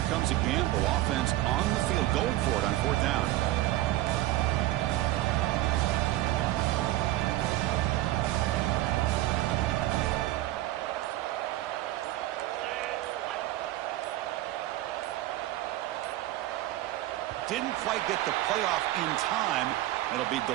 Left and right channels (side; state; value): left; quieter; 15.9 dB